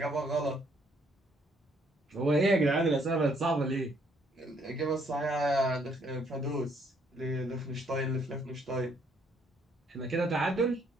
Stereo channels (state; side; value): normal; both; correlation 0.67